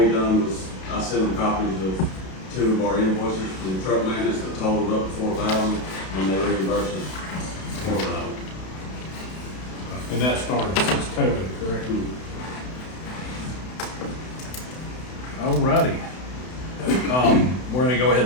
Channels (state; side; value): late; right; 32 ms